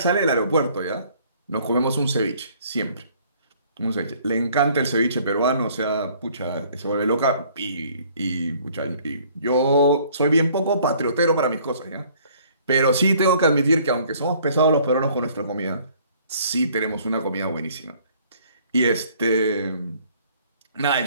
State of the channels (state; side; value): inverted; both; correlation -0.58